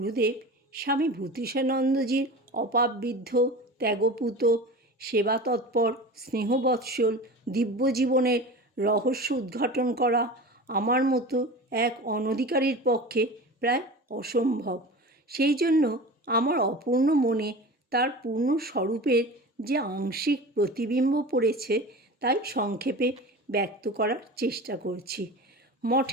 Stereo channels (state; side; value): normal; both; correlation 0.33